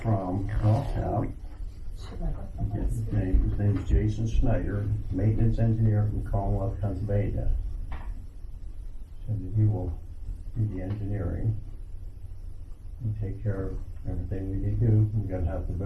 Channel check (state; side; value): identical; both; correlation 1.00